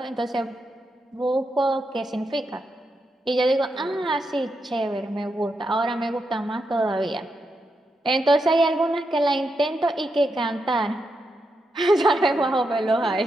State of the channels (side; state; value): both; normal; correlation 0.84